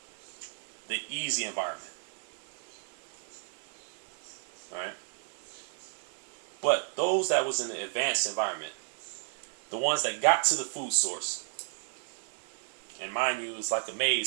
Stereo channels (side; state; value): left; silent; 56 dB below the other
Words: the easy environment. All right? But those that was in the advanced environment, the ones that got to the food source, and mind you, it's like a